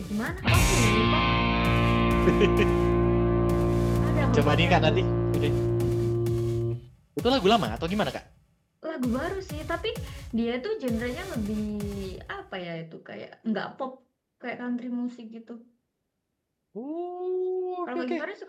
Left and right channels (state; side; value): identical; both; correlation 1.00